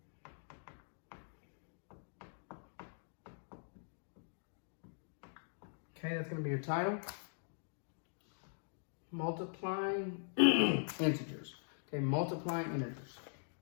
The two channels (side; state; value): right; silent; digital silence